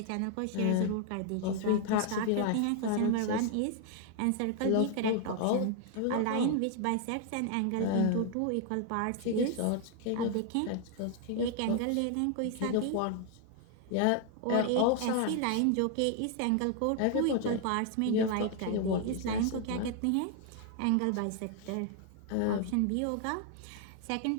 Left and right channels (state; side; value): different; both; correlation 0.00